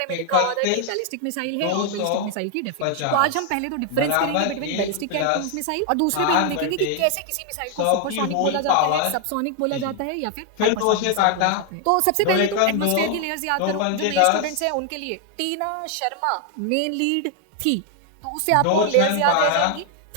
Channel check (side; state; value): both; different; correlation 0.00